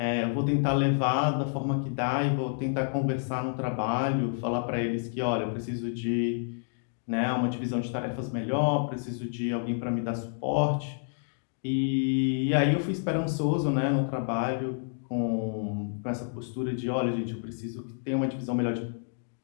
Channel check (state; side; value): silent; right; digital silence